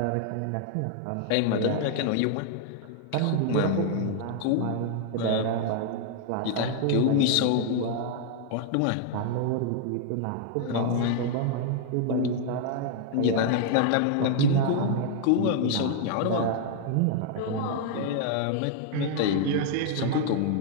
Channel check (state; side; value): different; both; correlation 0.00